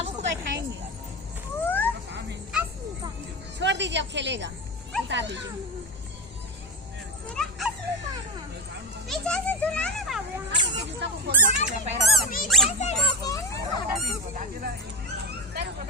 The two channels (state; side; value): normal; both; correlation 0.20